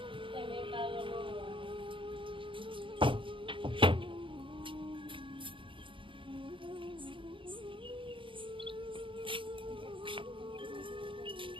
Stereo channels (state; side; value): late; left; 0.25 ms